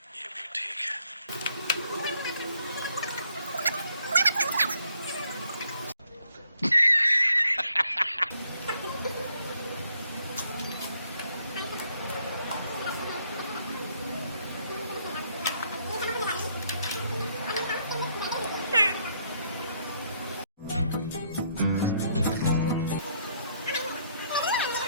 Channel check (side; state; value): both; inverted; correlation -0.69